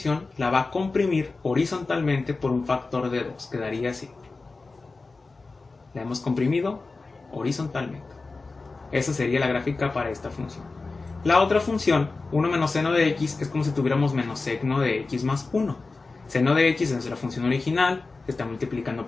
la va a comprimir horizontalmente por un factor de 2. Quedaría así. La hemos comprimido horizontalmente. Esa sería la gráfica para esta función. La otra función, 1 menos seno de x, es como si tuviéramos menos seno de x más 1. Seno de x es la función original, se está multiplicando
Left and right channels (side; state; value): right; quieter; 3.8 dB